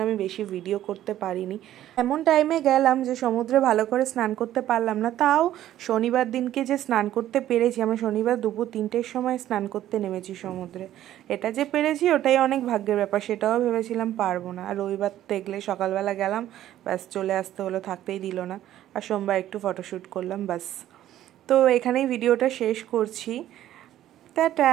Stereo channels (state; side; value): quieter; left; 12.7 dB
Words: আমি বেশি ভিডিও করতে পারিনি। এমন টাইমে গেলাম যে সমুদ্রে ভালো করে স্নান করতে পারলাম না। তাও শনিবার দিনকে যে স্নান করতে পেরেছি, আমি শনিবার দুপুর 3টের সময় স্নান করতে নেমেছি সমুদ্রে। এটা যে পেরেছি ওটাই অনেক ভাগ্যের ব্যাপার, সেটাও ভেবেছিলাম পারবো না। আর রবিবার দেখলে সকালবেলা গেলাম, ব্যাস চলে আসতে হলো, থাকতেই দিল না। আর সোমবার একটু ফটোশ্যুট করলাম, ব্যাস। তো এখানেই ভিডিওটা শেষ করছি,